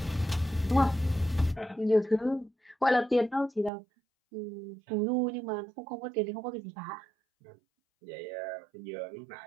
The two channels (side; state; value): left; drops out; at 3.7 s